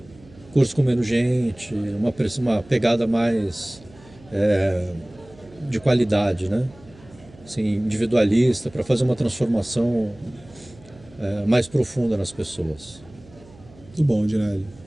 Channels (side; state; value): right; noise; hum, 23 dB below the sound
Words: Curso com menos gente, uma pegada mais de qualidade, né? Assim, individualista, para fazer uma transformação mais profunda nas pessoas. Muito bom, Dinelli.